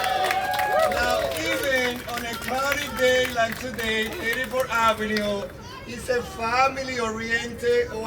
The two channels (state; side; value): identical; both; correlation 1.00